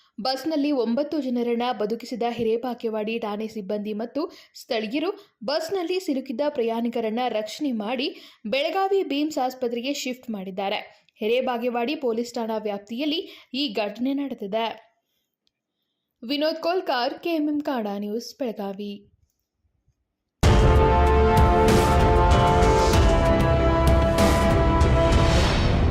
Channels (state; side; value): identical; both; correlation 1.00